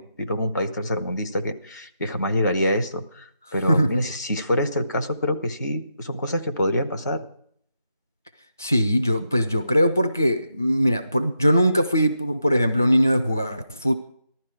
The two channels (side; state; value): both; inverted; correlation -0.83